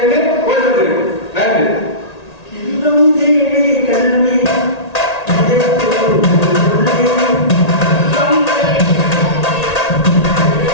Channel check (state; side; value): late; right; 1.8 ms